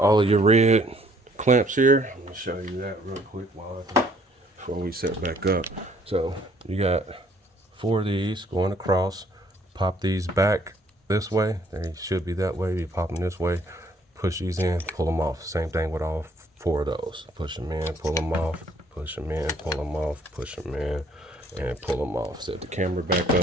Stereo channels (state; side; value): normal; both; correlation 0.62